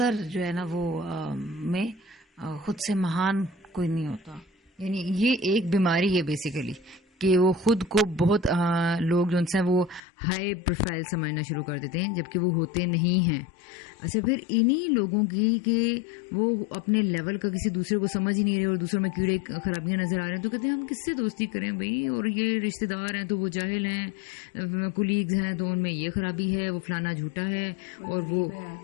جو ہے نا وہ میں خود سے مہان کوئی نہیں ہوتا. یعنی یہ ایک بیماری ہے بیسیکلی کہ وہ خود کو بہت لوگ جو ان سے وہ ہائی پروفائل سمجھنا شروع کر دیتے ہیں جبکہ وہ ہوتے نہیں ہیں. اچھا, پھر انہی لوگوں کی کہ وہ اپنے لیول کا کسی دوسرے کو سمجھ ہی نہیں رہے اور دوسروں میں کیڑے خرابیاں نظر آ رہے ہیں, تو کہتے ہیں ہم کس سے دوستی کریں بھائی, اور یہ رشتہ دار ہیں تو وہ جاہل ہیں, کولیگز ہیں تو ان میں یہ خرابی ہے, وہ فلانا جھوٹا ہے, اور وہ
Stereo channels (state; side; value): drops out; right; at 10.0 s